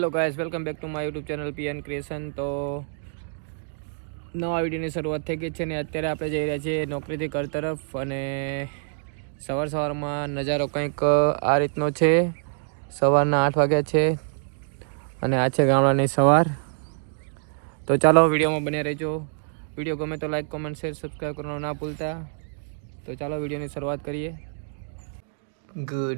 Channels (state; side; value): silent; left; digital silence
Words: guys, welcome back to my YouTube channel PN creation. તો નવા વિડીયોની શરૂઆત થઈ ગઈ છે ને અત્યારે આપણે જઈ રહ્યા છીએ નોકરીથી ઘર તરફ. અને સવારમાં નજારો કંઈક આ રીતનો છે. સવારના 8 વાગ્યા છે અને આ છે ગામડાની સવાર. તો ચાલો વિડીયોમાં બન્યા રહેજો. વિડીયો ગમે તો લાઈક, કોમેન્ટ, શેર, સબસ્ક્રાઈબ કરવાનું ના ભૂલતા. તો ચાલો વિડીયોની શરૂઆત કરીએ.